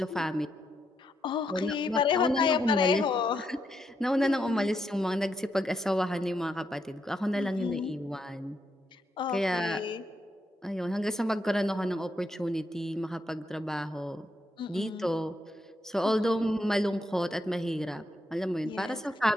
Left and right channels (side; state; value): both; normal; correlation 0.79